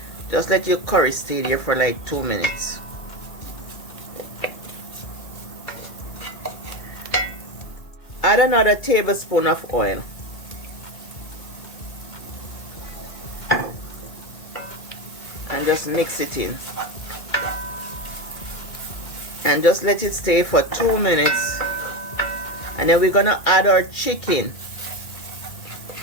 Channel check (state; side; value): late; right; 2.1 ms